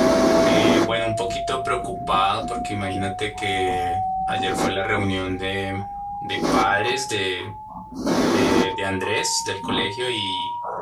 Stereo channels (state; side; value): identical; both; correlation 1.00